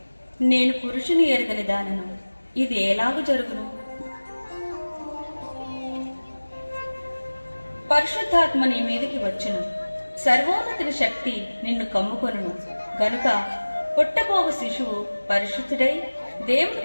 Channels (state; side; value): inverted; both; correlation -1.00